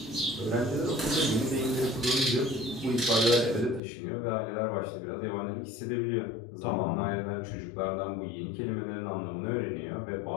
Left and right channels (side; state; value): right; drops out; at 3.8 s